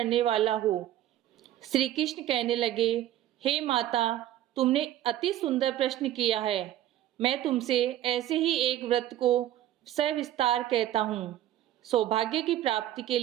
वाला हो। श्री कृष्ण कहने लगे, हे माता, तुमने अति सुंदर प्रश्न किया है। मैं तुमसे ऐसे ही एक व्रत को सविस्तार कहता हूँ। सौभाग्य की प्राप्ति के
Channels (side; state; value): left; quieter; 12.9 dB